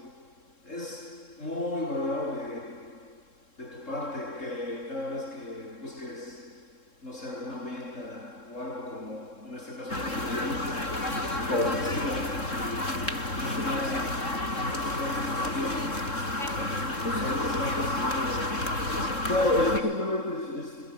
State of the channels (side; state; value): right; late; 3.7 ms